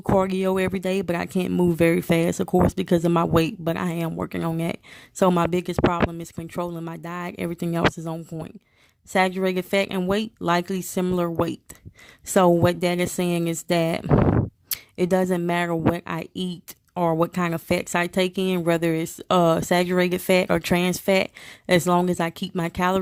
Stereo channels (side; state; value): both; identical; correlation 1.00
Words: cardio every day, but I can't move very fast, of course, because of my weight, but I am working on that. So my biggest problem is controlling my diet. Everything else is on point. Saturated fat and weight, likely similar weight. So what that is saying is that it doesn't matter what I eat or what kind of fats I take in, whether it's saturated fat or trans fat, as long as I keep my